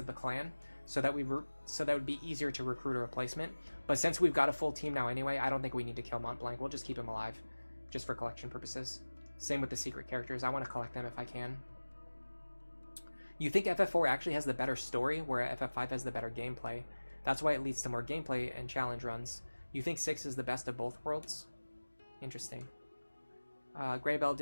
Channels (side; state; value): both; inverted; correlation -1.00